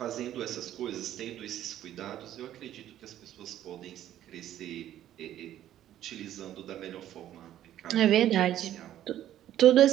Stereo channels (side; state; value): left; quieter; 12.1 dB